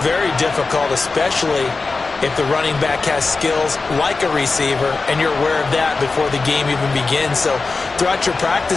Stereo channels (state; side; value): quieter; right; 4.0 dB